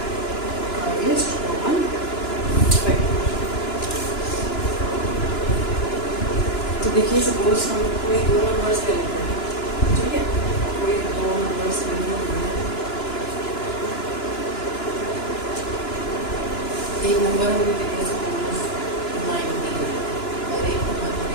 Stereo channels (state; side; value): late; right; 2.9 ms